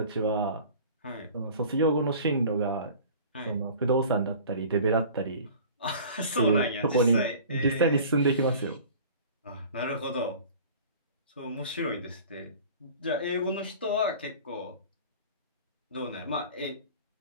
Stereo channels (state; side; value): inverted; both; correlation -0.43